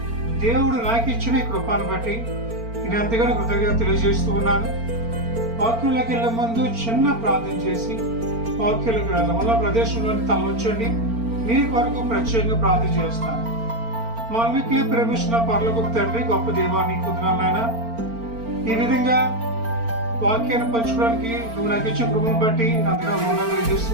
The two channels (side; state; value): left; late; 4.4 ms